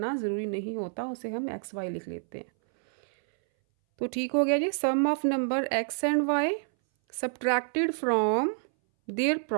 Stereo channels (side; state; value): left; silent; 59 dB below the other